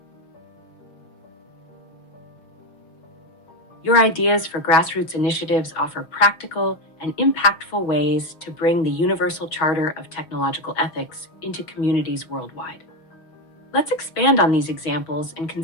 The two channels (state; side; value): late; right; 6.2 ms